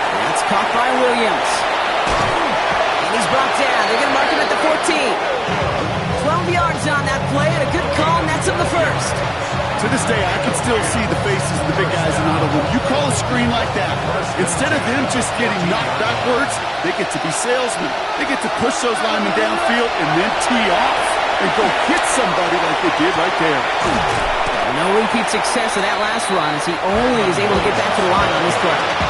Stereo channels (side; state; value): both; identical; correlation 1.00